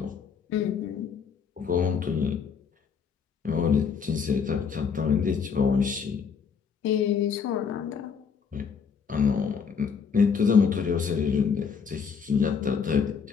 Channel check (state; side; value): quieter; right; 6.3 dB